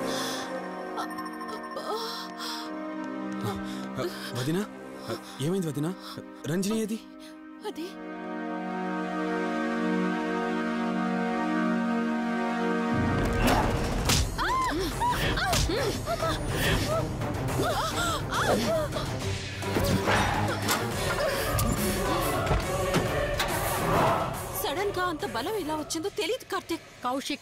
వదినా, ఏమైంది వదినా? రంజని ఏది? అది సడన్ గా అంత బలం ఎలా వచ్చిందో తెలియదు కార్తీక్.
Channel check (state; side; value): identical; both; correlation 1.00